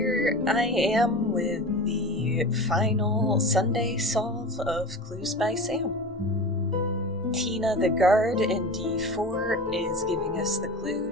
I am with the final Sunday solve of Clues by Sam. Tina the guard in D4 is giving us the clue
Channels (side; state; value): both; normal; correlation 0.32